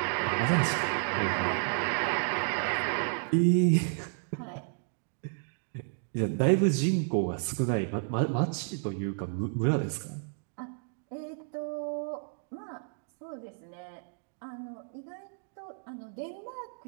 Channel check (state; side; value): silent; left; digital silence